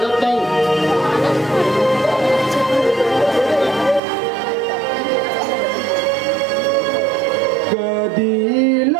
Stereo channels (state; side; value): drops out; left; at 4.0 s